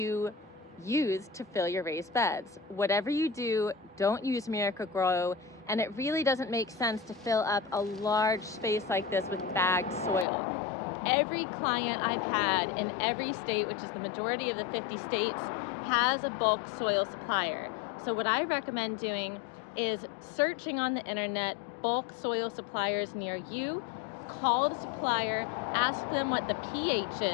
use to fill your raised beds? Whatever you do, don't use Miracle-Gro, and it really doesn't make sense to fill up a large space like this with bagged soil. Every client I've had in every state, which is the majority of the 50 states, has a bulk soil supplier. So what I recommend doing is searching on the internet bulk soil suppliers near you, call the supplier, ask them what the pH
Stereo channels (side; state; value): right; drops out; at 10.2 s